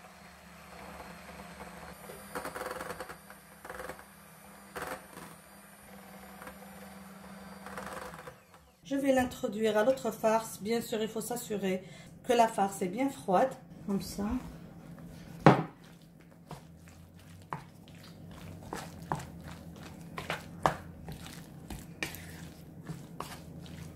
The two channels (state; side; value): identical; both; correlation 1.00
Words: Je vais l'introduire à l'autre farce. Bien sûr, il faut s'assurer que la farce est bien froide, comme ça.